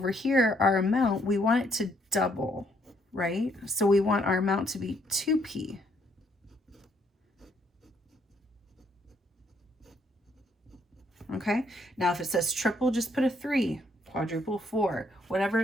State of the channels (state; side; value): normal; both; correlation 0.70